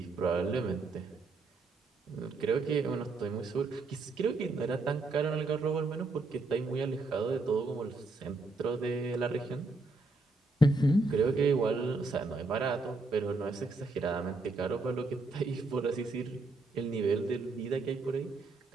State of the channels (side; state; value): left; quieter; 3.4 dB